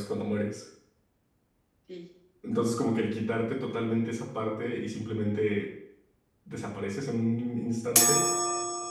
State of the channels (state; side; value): identical; both; correlation 1.00